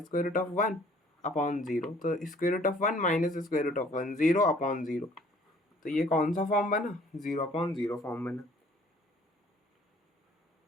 square root of 1 upon zero. तो square root of 1 minus square root of 1 zero upon zero, तो ये कौन सा फॉर्म बना, जीरो अपॉन जीरो फॉर्म बना।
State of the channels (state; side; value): normal; both; correlation 0.57